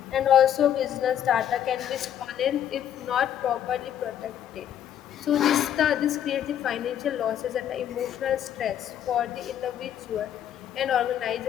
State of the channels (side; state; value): right; quieter; 10.2 dB